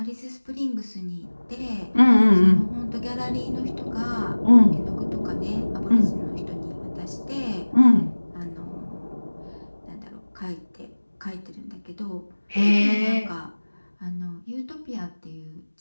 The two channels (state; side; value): inverted; both; correlation -1.00